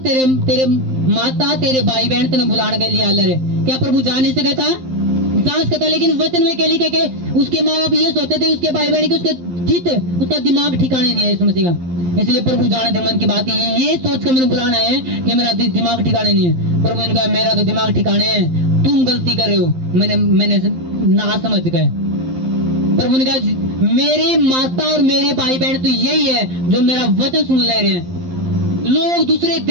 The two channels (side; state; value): left; late; 12 ms